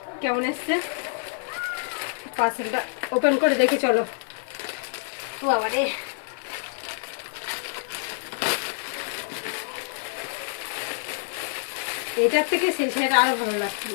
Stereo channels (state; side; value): silent; right; digital silence